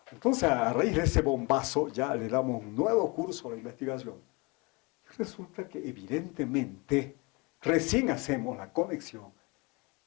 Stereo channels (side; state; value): right; quieter; 27.5 dB